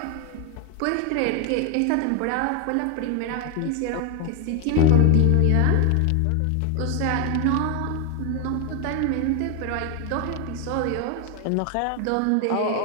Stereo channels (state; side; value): different; both; correlation 0.01